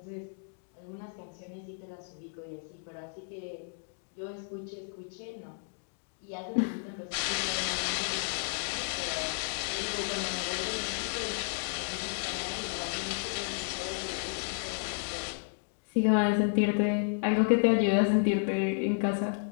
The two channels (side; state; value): right; silent; digital silence